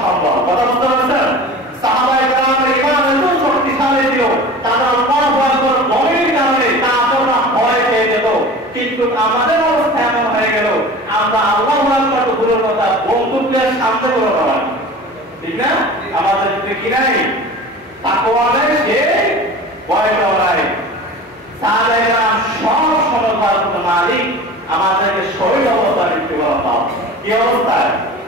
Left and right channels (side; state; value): both; normal; correlation 0.37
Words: সম্ভব, কথা বুঝতে পারছেন? সাহাবায়ে কেরামের ঈমান এত শক্তিশালী ছিল, তারা আল্লাহু আকবার বলার কারণে কাফেররা ভয় পেয়ে যেত। কিন্তু আমাদের অবস্থা এমন হয়ে গেল, আমরা আল্লাহু আকবার তো দূরের কথা, বন্দুকের সামনে করে দাঁড়াই, ঠিক না? আমাদের ভিতরে কি নাই? তাকওয়া নাই, সে ভয়টাও নাই। সাহাবায়ে কেরাম সব সময় মালিক আমাদেরকে শহীদ অবস্থায় মৃত্যুবরণ দাও। কি অবস্থায়?